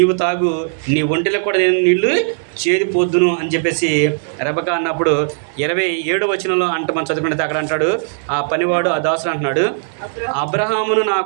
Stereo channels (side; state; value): left; silent; digital silence